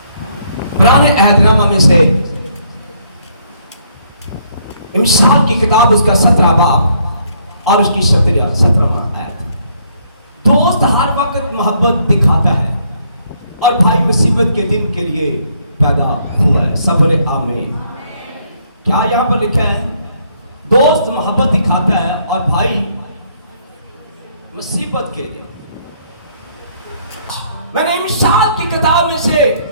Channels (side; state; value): both; inverted; correlation -0.68